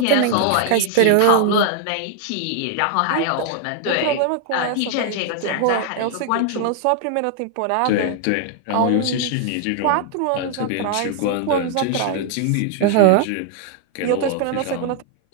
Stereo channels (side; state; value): both; different; correlation 0.00